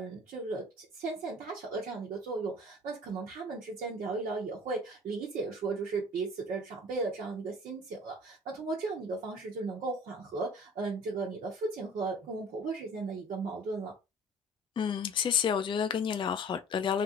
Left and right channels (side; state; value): both; normal; correlation 0.46